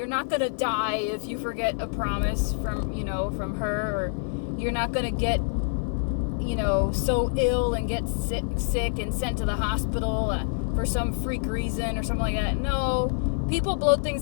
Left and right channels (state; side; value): silent; right; 59 dB below the other